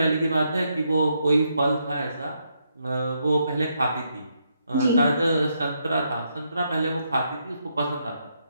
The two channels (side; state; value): both; inverted; correlation -0.78